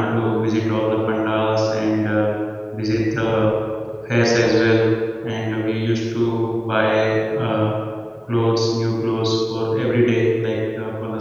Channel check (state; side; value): identical; both; correlation 1.00